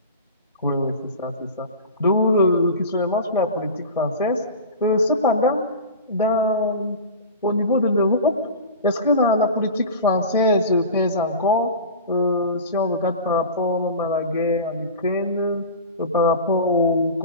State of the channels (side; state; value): both; inverted; correlation -0.32